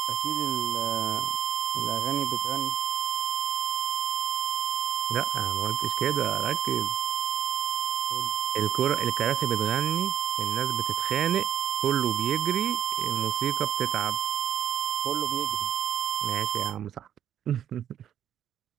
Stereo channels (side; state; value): left; quieter; 10.1 dB